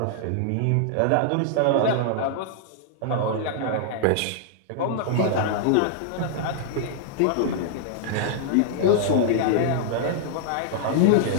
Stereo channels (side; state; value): both; different; correlation -0.01